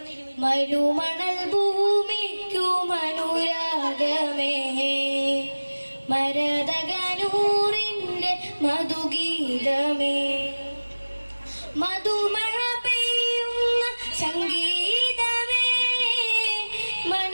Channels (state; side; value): inverted; both; correlation -1.00